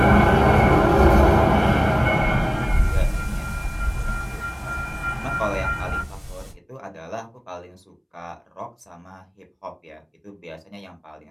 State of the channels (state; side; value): identical; both; correlation 1.00